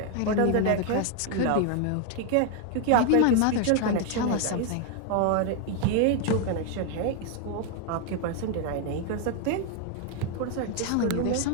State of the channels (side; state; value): both; different; correlation 0.00